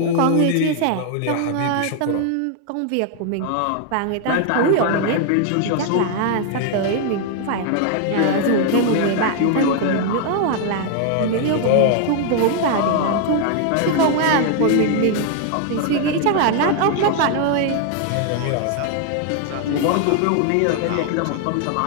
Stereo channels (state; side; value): different; both; correlation 0.00